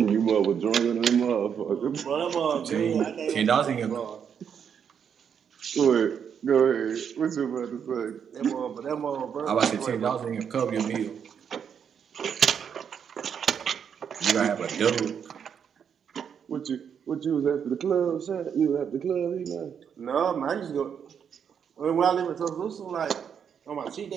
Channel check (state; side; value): quieter; left; 7.6 dB